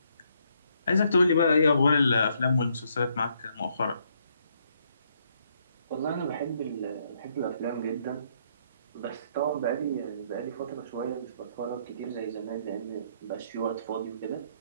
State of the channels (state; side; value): inverted; both; correlation -0.72